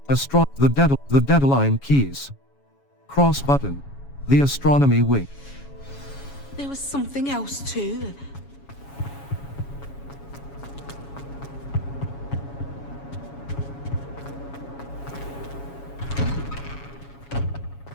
The Deadline Keys. Cross Button. The Astronomy Wing. There was something else too.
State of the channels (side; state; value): right; late; 7.2 ms